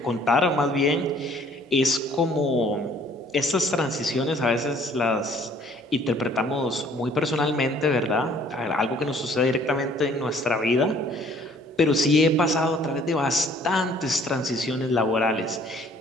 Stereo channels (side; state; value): both; normal; correlation 0.57